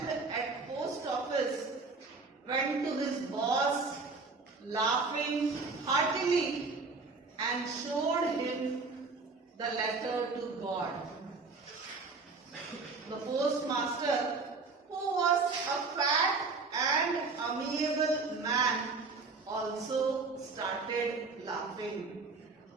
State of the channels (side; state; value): left; quieter; 4.1 dB